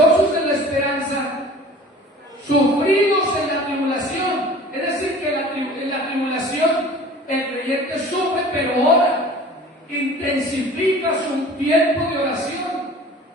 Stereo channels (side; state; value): both; normal; correlation 0.44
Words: en la esperanza, sufridos en la tribulación. Es decir, que en la tribulación el creyente sufre, pero ora, intensifica su tiempo de oración,